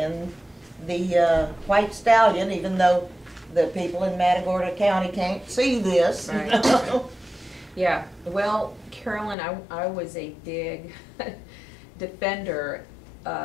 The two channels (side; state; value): right; drops out; at 9.3 s